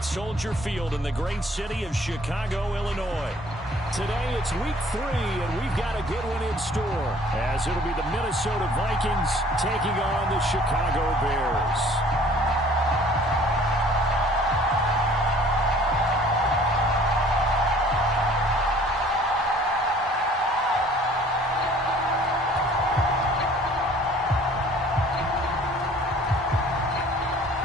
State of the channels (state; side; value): normal; both; correlation 0.53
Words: Soldier Field in the great city of Chicago, Illinois. Today it's week 3, and we've got a good one in store, as it'll be the Minnesota Vikings taking on the Chicago Bears.